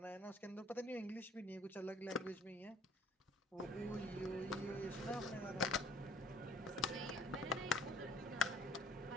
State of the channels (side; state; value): both; normal; correlation 0.55